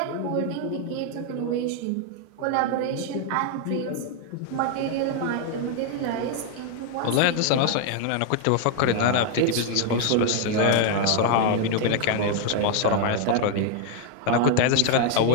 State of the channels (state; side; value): different; both; correlation 0.00